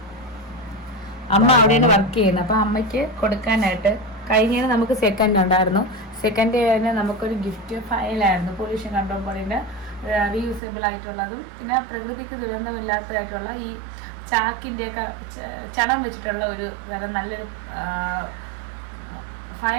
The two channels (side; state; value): left; drops out; at 10.6 s